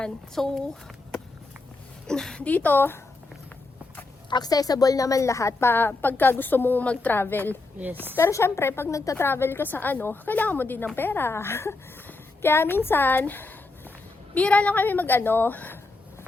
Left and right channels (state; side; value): quieter; right; 3.4 dB